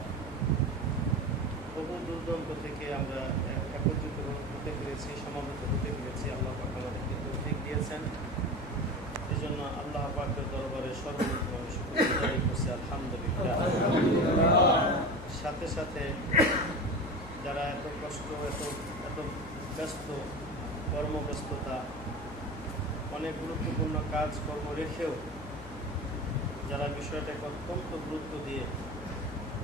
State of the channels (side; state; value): left; noise; hum, 14 dB below the sound